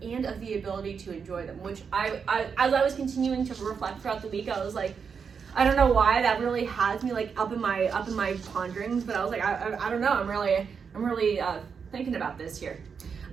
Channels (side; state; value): left; quieter; 6.2 dB